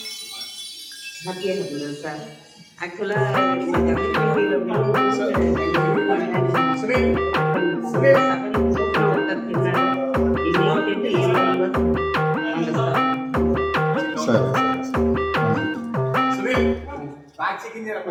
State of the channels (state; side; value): identical; both; correlation 1.00